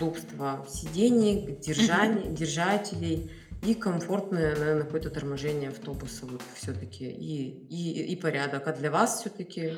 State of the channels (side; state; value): both; identical; correlation 1.00